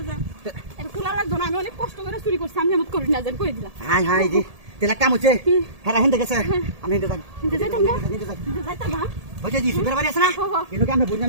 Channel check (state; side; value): late; left; 1.7 ms